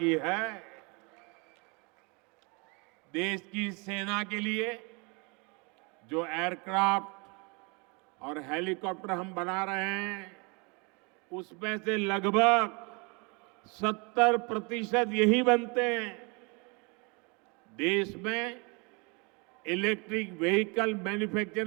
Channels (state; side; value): quieter; left; 30.7 dB